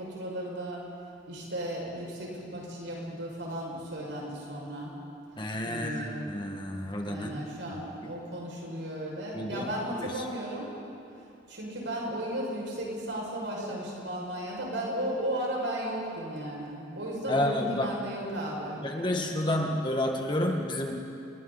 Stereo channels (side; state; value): both; normal; correlation 0.38